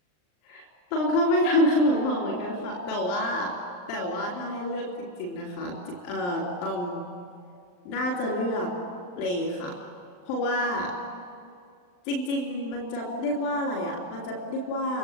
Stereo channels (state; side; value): late; right; 39 ms